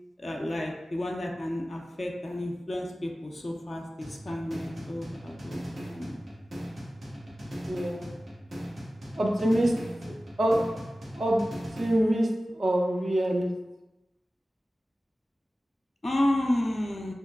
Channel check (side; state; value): both; normal; correlation 0.96